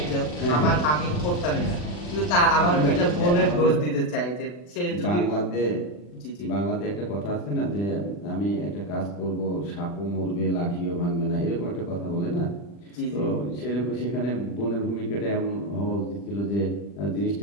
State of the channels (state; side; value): late; right; 40 ms